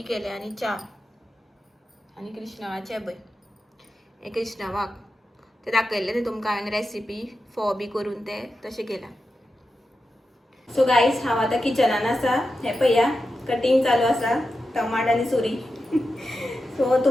केले आनी च्या. आनी कृष्णवाचें पळय हें कृष्णवाक तें दाखयल्लें न्ही तुमकां हांवें रेसिपी फोव बी करून तें तशें केलां. सो गायज हांव आतां किचनान आसा. हें पळया कटींग चालू आसा टमाट आनी सुरी. सो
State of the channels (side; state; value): both; normal; correlation 0.90